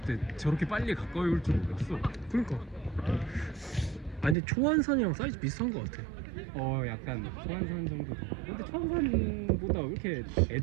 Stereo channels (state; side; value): drops out; left; at 4.4 s